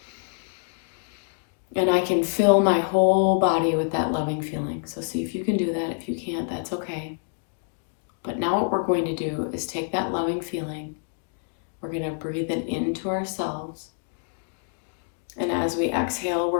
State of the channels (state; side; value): silent; right; digital silence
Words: And I can fill my whole body with that loving feeling. So see if you can do that. If you can't, that's okay. But now what we're going to do is take that loving feeling. We're going to breathe it into ourselves. And as we exhale,